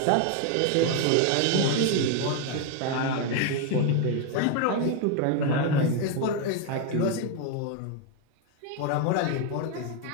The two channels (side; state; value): both; different; correlation 0.01